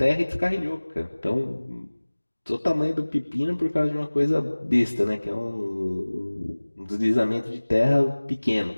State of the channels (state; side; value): inverted; both; correlation -1.00